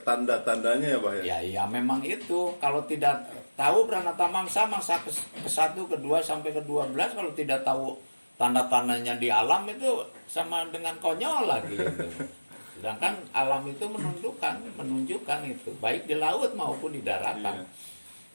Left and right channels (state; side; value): inverted; both; correlation -1.00